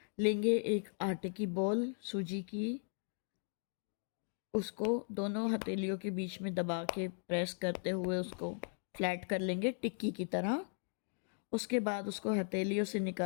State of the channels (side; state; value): right; silent; 53 dB below the other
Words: लेंगे एक आटे की बॉल सूजी की, उसको दोनों हथेलियों के बीच में दबा के प्रेस करते हुए उसको फ्लैट कर लेंगे टिक्की की तरह। उसके बाद उसको हथेलियों से